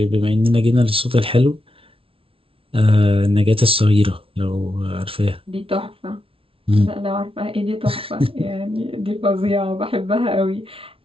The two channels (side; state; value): left; late; 0.26 ms